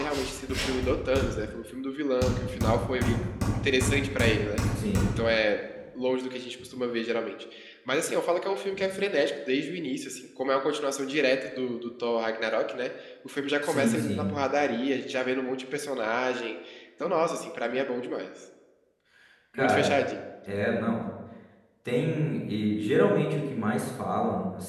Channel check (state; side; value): identical; both; correlation 1.00